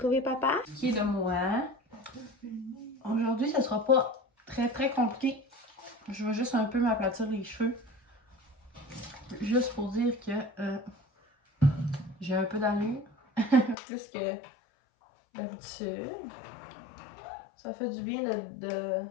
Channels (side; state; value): right; drops out; at 13.8 s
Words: papa? Qui est de moi. Aujourd'hui, ça sera pas très compliqué. Je vais juste un peu m'aplatir les cheveux. Juste pour dire que j'ai un peu d'allure. Plus que d'habitude. Ça fait du bien